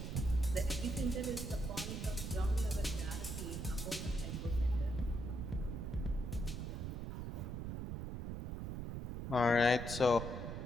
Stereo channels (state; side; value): noise; right; rumble, 4 dB below the sound